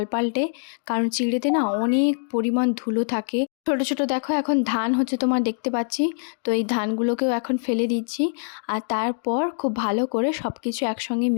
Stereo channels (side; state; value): right; silent; digital silence